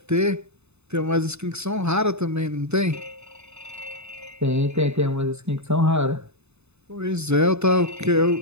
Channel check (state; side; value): late; left; 0.81 ms